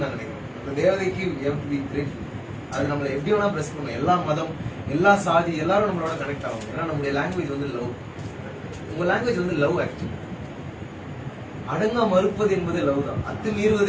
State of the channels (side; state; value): both; identical; correlation 1.00